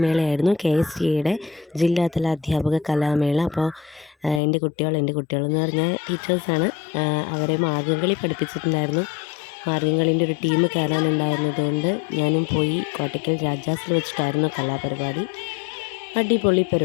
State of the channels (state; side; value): drops out; right; at 4.4 s